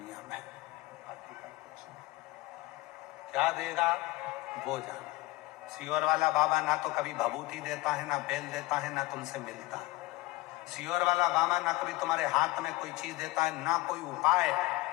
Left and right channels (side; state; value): right; quieter; 20.3 dB